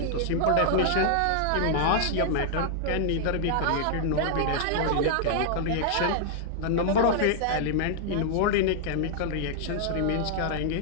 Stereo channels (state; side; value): different; both; correlation -0.01